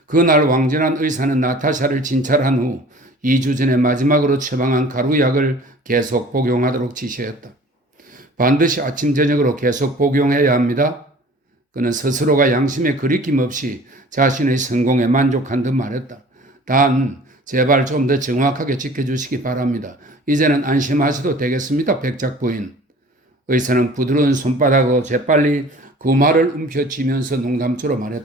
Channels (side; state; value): both; normal; correlation 0.47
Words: 그날 왕전한 의사는 나타샤를 진찰한 후 2주 전에 마지막으로 처방한 가루약을 계속 복용하도록 지시했다. 반드시 아침 저녁으로 계속 복용해야 합니다. 그는 스스로가 양심에 거리낌 없이 자신의 성공에 만족한 듯 말했다. 단 제발 좀 더 정확하게 지켜주시기 바랍니다. 이제는 안심하셔도 되겠습니다, 백작 부인. 의사는 부드러운 손바닥으로 재빨리 그 말을 움켜쥐면서 농담처럼